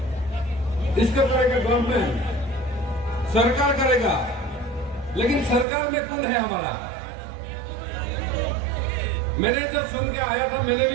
इसको करेगा गवर्नमेंट, सरकार करेगा, लेकिन सरकार में कौन है हमारा? मैंने जब सुन के आया था, मैंने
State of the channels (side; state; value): left; drops out; at 5.7 s